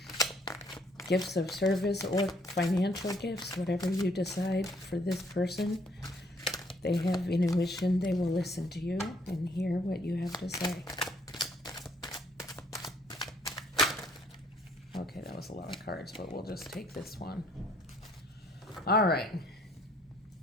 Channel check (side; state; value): both; normal; correlation 0.65